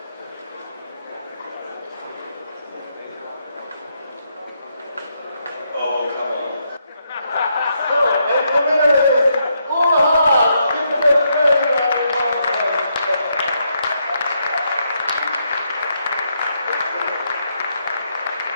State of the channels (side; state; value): both; inverted; correlation -0.77